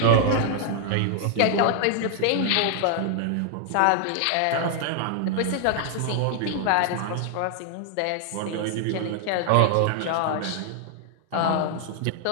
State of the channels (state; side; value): different; both; correlation 0.00